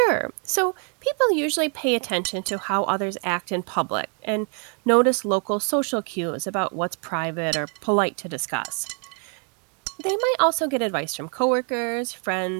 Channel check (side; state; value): left; quieter; 39.1 dB